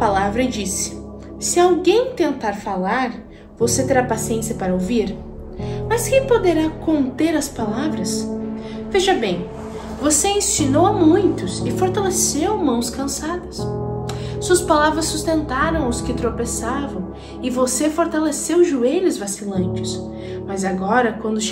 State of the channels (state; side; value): identical; both; correlation 1.00